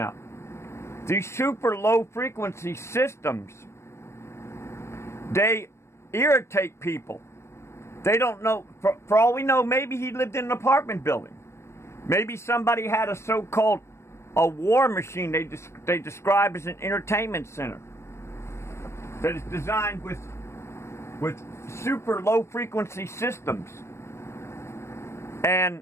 These super low frequency systems, they irritate people. They don't know, for all we know, maybe he lived in an apartment building. Maybe somebody had a so-called a war machine they describe as an entertainment center that is designed with super low frequency systems. And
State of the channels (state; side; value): late; right; 0.13 ms